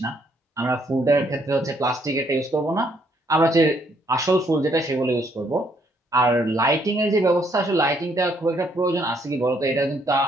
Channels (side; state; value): both; normal; correlation 0.70